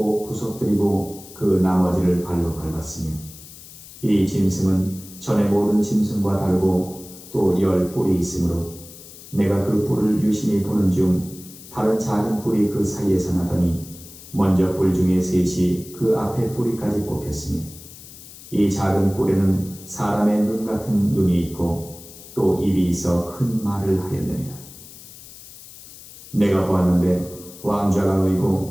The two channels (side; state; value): left; noise; hiss, 18 dB below the sound